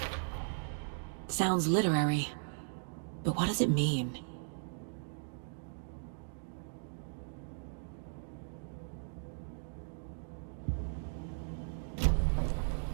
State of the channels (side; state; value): left; silent; digital silence